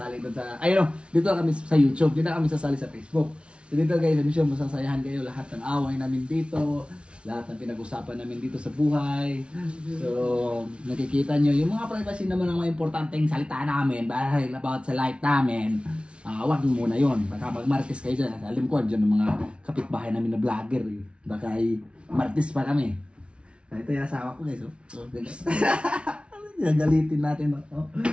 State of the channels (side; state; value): left; late; 0.059 ms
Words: doon sa, ayun, dito na kami sa YouTube, dito na kami sasali sa Facebook. So dito guys, I'm sure masasayahan kayo lahat ng away namin dito. Lahat ng pinag-usapan namin dito sa buhay. So, nakikita nyo, yung mga privacy naman ang mga importanteng salita namin dahil about sa life namin. Wag muna yun. Baka mag-martis kayo dyan. Alam ko, dyan ng mga kapitbahay namin na vlogger. Eh. Baka ay martis pa kami. Ito yung asawa ko guys. Oh. Gagalitin natin. Oh.